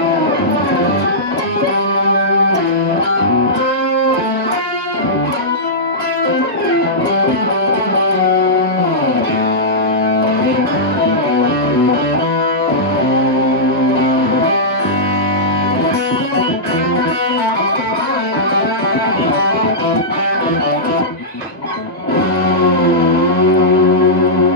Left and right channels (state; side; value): normal; both; correlation -0.13